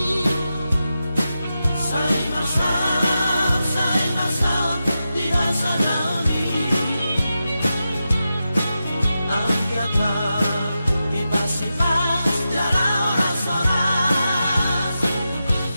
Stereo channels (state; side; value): inverted; both; correlation -0.90